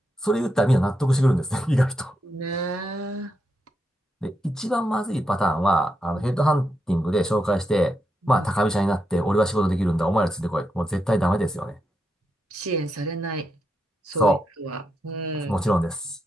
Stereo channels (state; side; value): normal; both; correlation 0.84